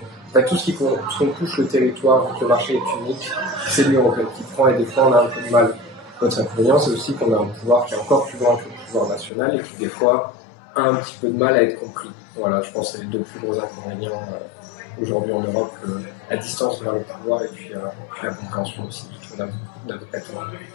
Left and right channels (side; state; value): right; drops out; at 9.3 s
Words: Enfin, tout ce qu'on touche le territoire, vu que le marché est unique, c'est l'Union européenne qui prend et des fois on a un peu de mal. Notre inconvénient, c'est aussi qu'on a un pouvoir qui est encore plus grand que le pouvoir national et qui des fois a un petit peu de mal à être compris. Voilà, je pense que c'est les deux plus gros inconvénients aujourd'hui en Europe, la distance vers le pouvoir et puis la compréhension aussi, la